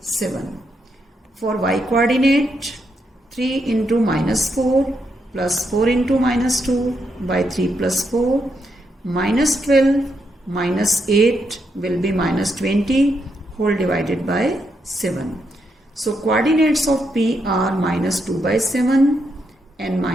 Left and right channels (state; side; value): normal; both; correlation 0.80